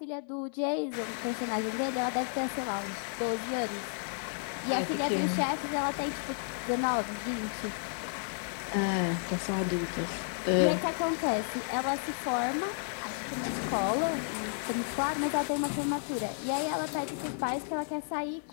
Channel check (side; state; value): right; silent; digital silence